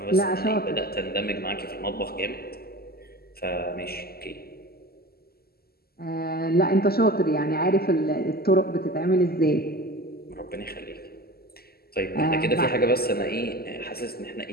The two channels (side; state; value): right; late; 0.45 ms